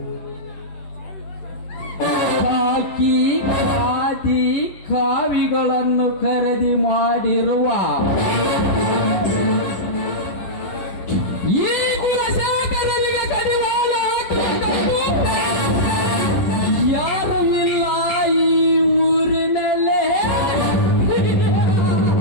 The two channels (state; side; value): late; right; 10 ms